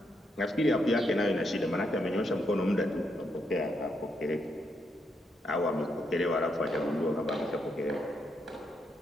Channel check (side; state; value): both; normal; correlation 0.79